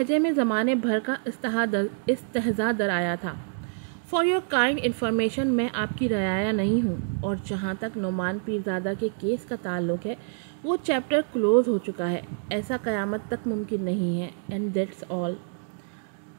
میں زمانے بھر کا استہزاء درایا تھا۔ فار یور کائنڈ انفارمیشن، میں آپ کی رعایا نہیں ہوں، اور جہاں تک نعمان پیرزادہ کے کیس کا تعلق ہے وہ چیپٹر کلوز ہو چکا ہے، ایسا قیامت تک ممکن نہیں ہے، اینڈ دیٹس آل۔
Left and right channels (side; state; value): left; silent; digital silence